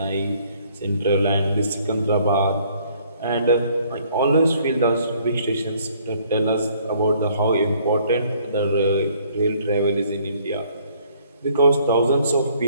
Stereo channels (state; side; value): inverted; both; correlation -0.62